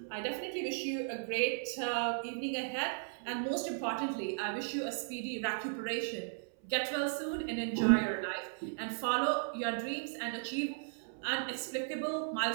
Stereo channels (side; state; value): left; silent; 54 dB below the other